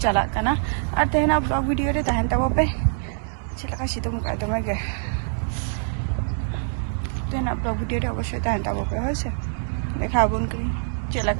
चला कना और तेहना ब्लॉग वीडियो रे तहन तबो पे चलका सितुम का दमे गे तेहना ब्लॉग वीडियो रे अवश्य तहन तबो पे होसे देखा बन करी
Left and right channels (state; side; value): silent; left; digital silence